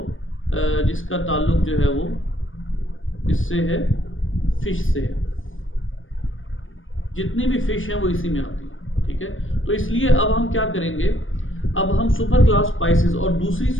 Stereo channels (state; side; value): late; right; 0.58 ms